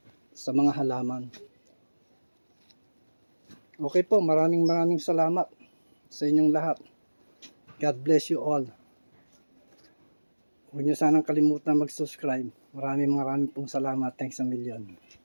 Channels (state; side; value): inverted; both; correlation -1.00